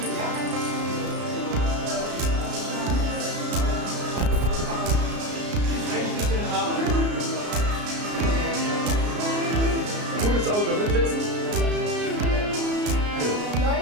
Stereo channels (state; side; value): late; left; 33 ms